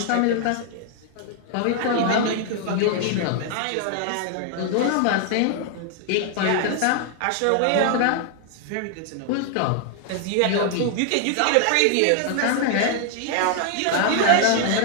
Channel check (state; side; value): different; both; correlation 0.00